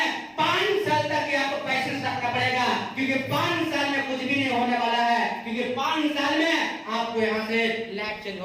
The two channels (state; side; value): identical; both; correlation 1.00